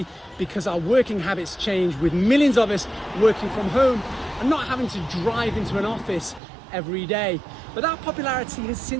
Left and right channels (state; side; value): drops out; left; at 6.4 s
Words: because our working habits changed, with millions of us working from home and not having to drive into an office every day. But that popularity has